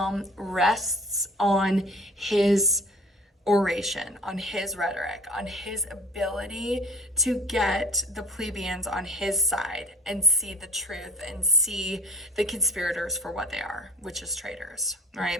rests on his oration, on his rhetoric, on his ability to get the plebeians on his side and see the truth and see the conspirators for what they are, which is traitors,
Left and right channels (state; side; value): normal; both; correlation 0.47